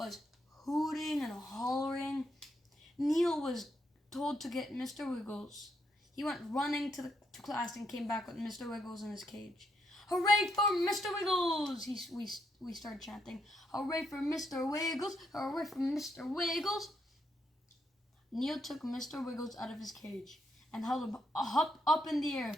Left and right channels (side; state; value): both; normal; correlation 0.77